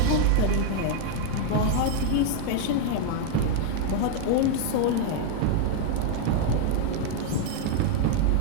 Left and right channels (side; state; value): both; different; correlation 0.00